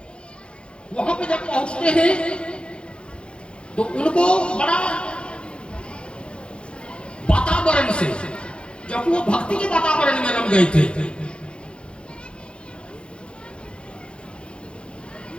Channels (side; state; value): right; late; 0.056 ms